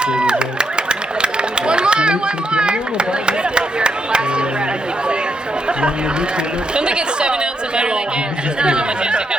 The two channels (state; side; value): normal; both; correlation 0.79